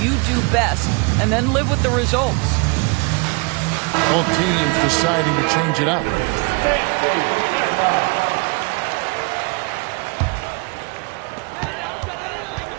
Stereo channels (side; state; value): left; quieter; 29.6 dB